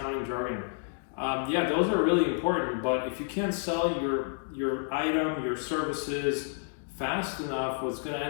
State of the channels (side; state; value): right; silent; digital silence